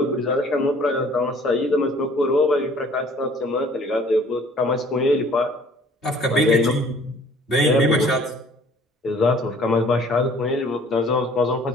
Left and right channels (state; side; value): normal; both; correlation 0.54